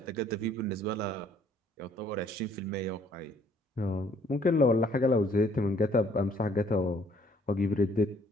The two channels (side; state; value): both; normal; correlation 0.62